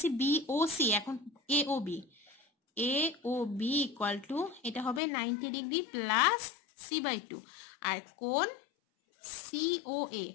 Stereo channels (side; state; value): right; drops out; at 5.0 s